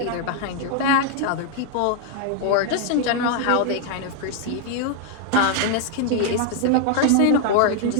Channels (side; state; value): both; different; correlation 0.00